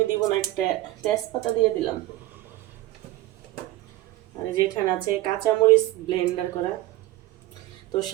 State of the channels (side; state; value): left; quieter; 16.7 dB